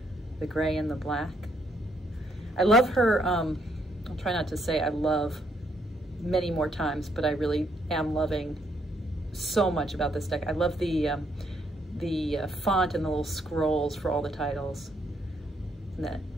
gray and the black. I love her, I'll try not to say I love many more times, but I really am loving so much about this deck. I love the font and the little scrolls for all the titles. And that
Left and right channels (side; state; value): both; normal; correlation 0.73